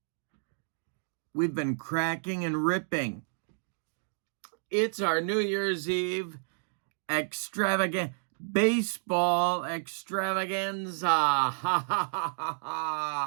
We've been cracking and ripping. It's our New Year's Eve baseball extravaganza. Ha ha ha ha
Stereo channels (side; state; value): left; silent; digital silence